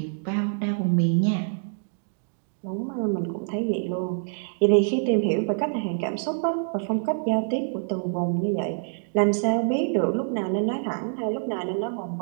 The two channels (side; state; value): left; silent; digital silence